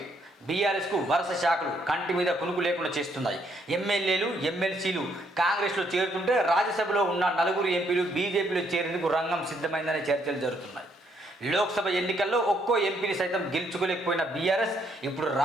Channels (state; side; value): normal; both; correlation 0.71